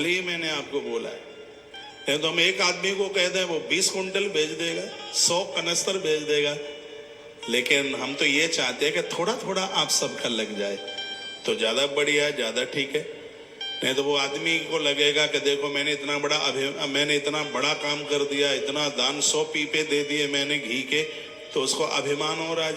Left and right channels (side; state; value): both; identical; correlation 1.00